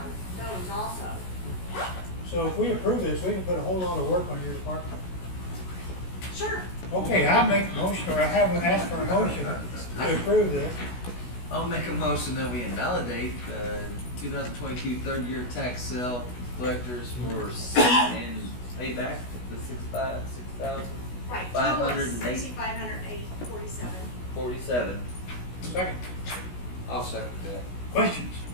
those also. So if we approve this, we can put a whole lot of work on your department. Sure. Okay, I'll make a motion, or I haven't asked for a motion to approve this. I'll make a motion that we invalidate the 2022 third-year tax sale collectors and pay back the $6,000. Right, total of 508. $6,508.47. Second. I'll second that. Questions?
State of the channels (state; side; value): late; right; 16 ms